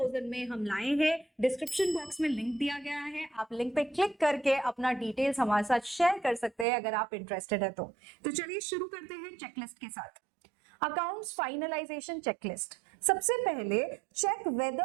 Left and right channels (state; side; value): drops out; left; at 6.7 s